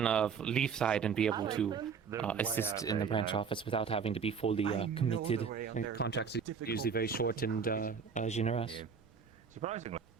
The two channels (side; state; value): left; quieter; 6.3 dB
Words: of Leafside and be able to assist in the branch office without having to be fully committed. And contracts are usually very short and generous. surprisingly,